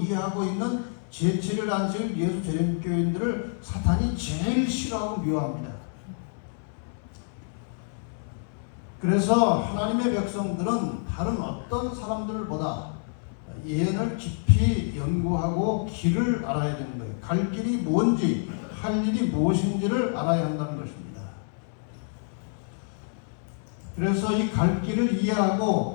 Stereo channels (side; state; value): right; silent; 60 dB below the other